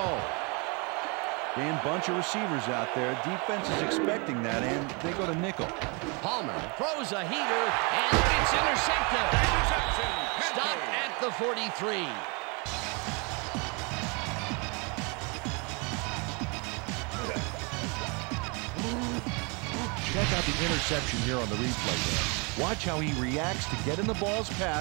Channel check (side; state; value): left; quieter; 31.6 dB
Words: Dan, bunch of receivers out there. Defense is expecting that, and they go to nickel. Palmer throws a heater, and it's intercepted. Stopped at the 43. Check out the interception here on the replay there. Watch how he reacts to get in the ball's